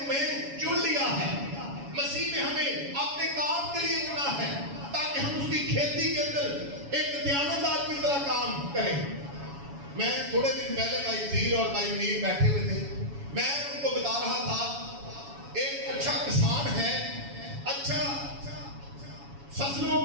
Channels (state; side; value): late; left; 7.1 ms